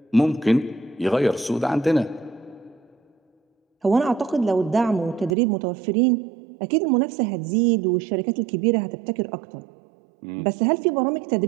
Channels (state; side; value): drops out; left; at 5.4 s